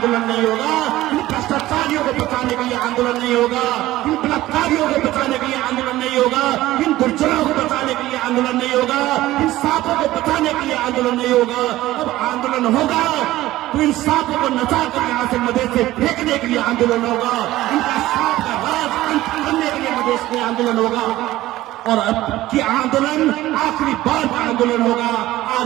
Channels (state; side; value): quieter; left; 16.0 dB